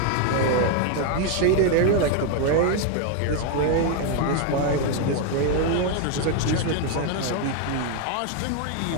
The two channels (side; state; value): both; different; correlation 0.01